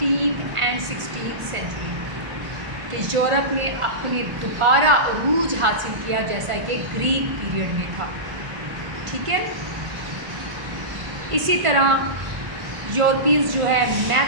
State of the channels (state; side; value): late; left; 1.5 ms